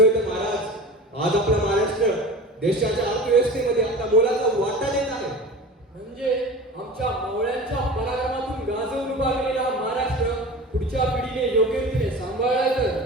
तर महाराज, आज आपला महाराष्ट्र देशाच्या अर्थव्यवस्थेमध्ये आपला मोलाचा वाटा देत आहे. म्हणजे आमच्या मावळ्यांच्या पराक्रमातून गाजवून उभा केलेला हा महाराष्ट्र पुढच्या पिढीने योग्य रीतीने सांभाळला तर.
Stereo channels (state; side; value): normal; both; correlation 0.34